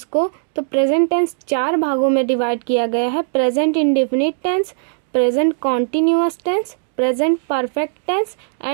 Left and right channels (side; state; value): left; silent; digital silence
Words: को। तो प्रेजेंट टेंस 4 भागों में डिवाइड किया गया है। Present indefinite tense, present continuous tense, present perfect tense